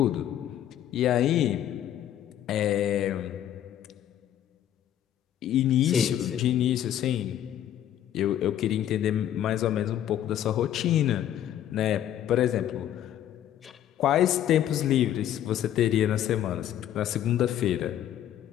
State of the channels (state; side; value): quieter; right; 11.2 dB